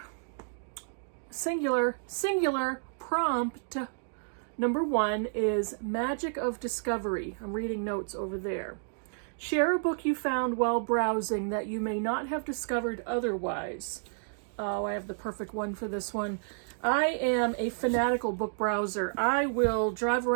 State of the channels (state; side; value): silent; left; digital silence